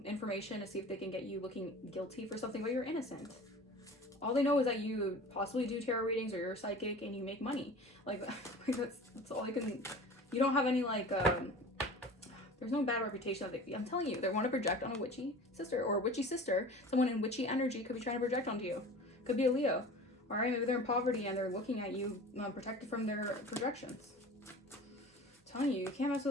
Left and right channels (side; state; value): both; normal; correlation 0.39